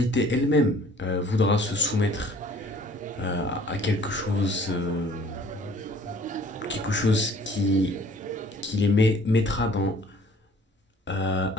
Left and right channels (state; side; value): normal; both; correlation 0.54